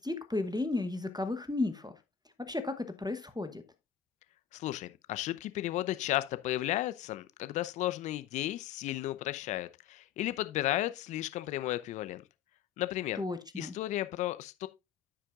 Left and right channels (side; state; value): right; quieter; 8.2 dB